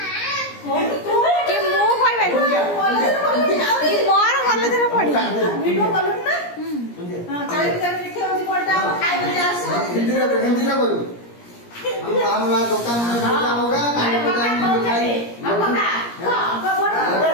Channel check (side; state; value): right; late; 17 ms